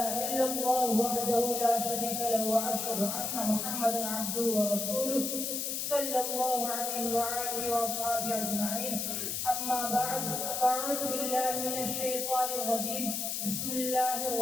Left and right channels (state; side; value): noise; left; hiss, 2 dB below the sound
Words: إلا الله وحده لا شريك له وأشهد أن محمدا عبده ورسوله صلى الله عليه وآله وأصحابه أجمعين. أما بعد فأعوذ بالله من الشيطان الرجيم. بسم الله